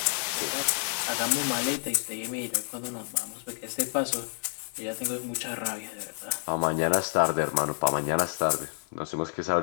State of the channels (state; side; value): silent; right; 59 dB below the other